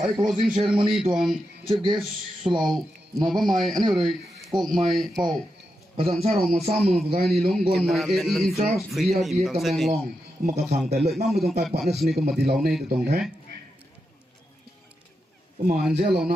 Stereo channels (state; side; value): normal; both; correlation 0.87